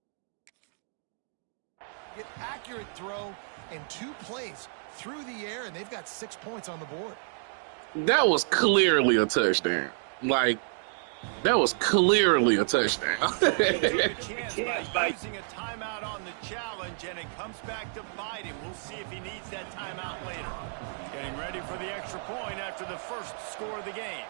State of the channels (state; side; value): silent; left; digital silence